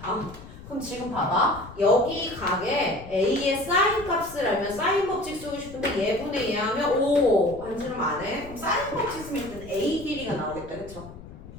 그럼 지금 봐봐. 여기 각에 A의 사인 값을 알면 사인 법칙 쓰고 싶은데 얘분의 얘 하면 5 반지름 안 해. 그럼 사인 법칙 쓰면 일단 A 길이가 나오겠다. 그쵸?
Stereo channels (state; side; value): noise; left; rumble, 16 dB below the sound